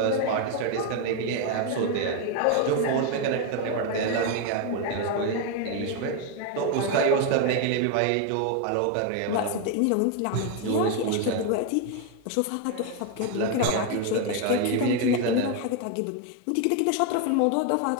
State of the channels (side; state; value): both; different; correlation 0.01